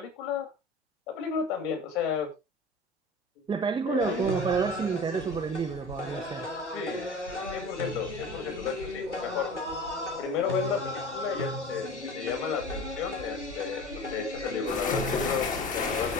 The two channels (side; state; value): both; normal; correlation 0.37